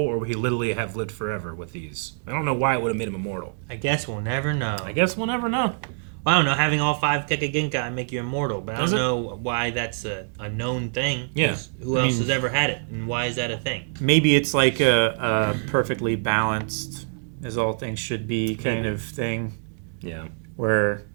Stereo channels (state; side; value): silent; left; digital silence